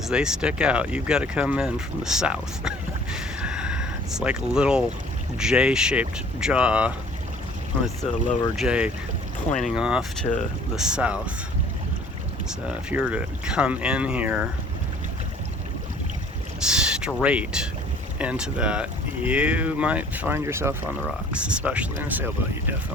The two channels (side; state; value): both; normal; correlation 0.53